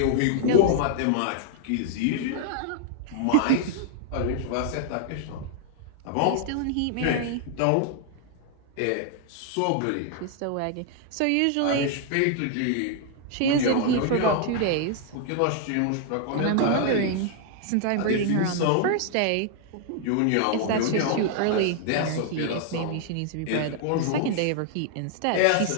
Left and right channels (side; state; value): both; different; correlation 0.00